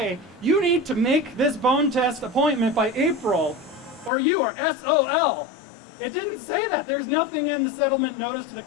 you need to make this bone test appointment by April, or you are SOL. It didn't say that. There's nothing in the settlement notice to the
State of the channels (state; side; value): drops out; right; at 4.1 s